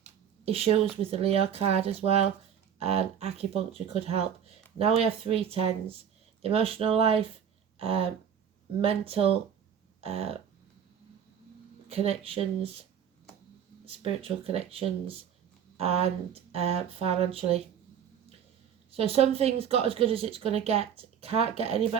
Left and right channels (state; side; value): quieter; left; 8.5 dB